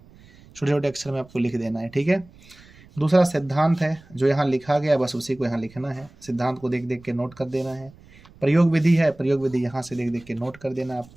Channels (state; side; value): noise; right; rumble, 25 dB below the sound